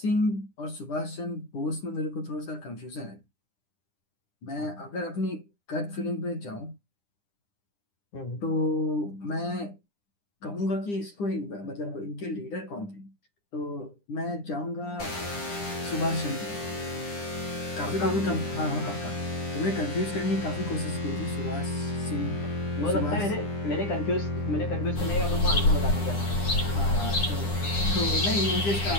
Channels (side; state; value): right; late; 9.9 ms